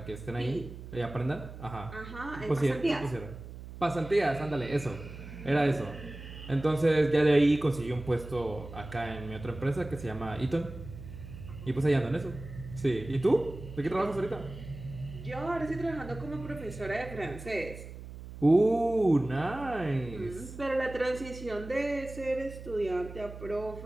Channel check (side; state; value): right; noise; hum, 13 dB below the sound